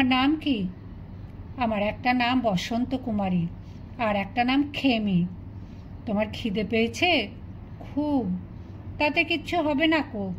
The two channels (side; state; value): both; identical; correlation 1.00